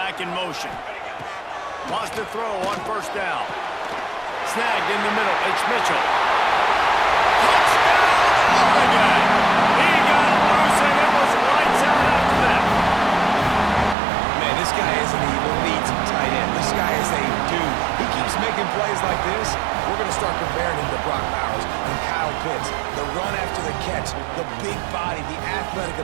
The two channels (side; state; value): left; drops out; at 14.0 s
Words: in motion. Wants to throw on 1st down. Snagged in the middle. It's Mitchell. Touchdown, Oregon! He got loose, and it was lights out after that. Man, this guy is an elite tight end. This guy is a dude. He keeps making plays like this. We're going to start comparing him to Brock Bowers and Kyle Pitts. The run after the catch, the big body, the athletic